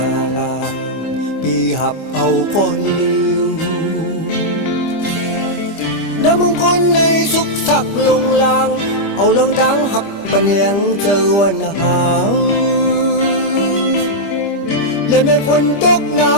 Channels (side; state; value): right; late; 25 ms